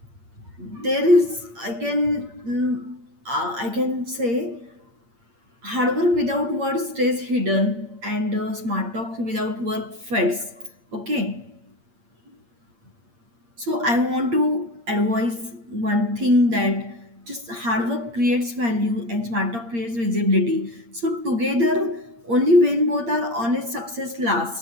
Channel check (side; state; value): left; late; 8.7 ms